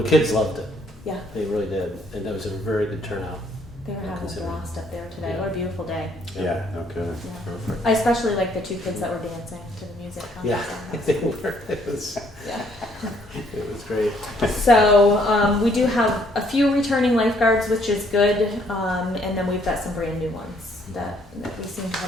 the kids loved it. Yeah, They really did. And that was a very good turnout. they were having a Considering. blast up there today. Yeah. What a beautiful day. Yeah, okay. Yeah. Perfect. I especially like the 2 kids that were dancing to the music. How Yeah, was they were. It was great. So we do have a few returning lifeguards, which is good, and then we've got some brand new ones that we seem to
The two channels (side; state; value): both; normal; correlation 0.66